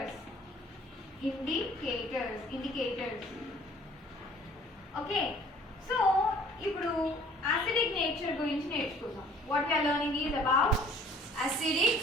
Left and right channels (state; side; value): normal; both; correlation 0.54